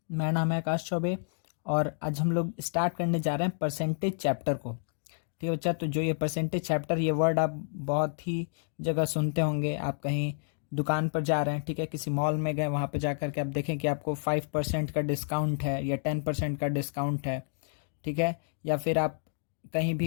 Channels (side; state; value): right; silent; digital silence